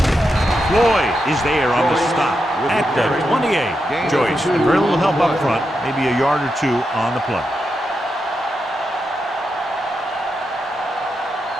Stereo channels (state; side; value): normal; both; correlation 0.86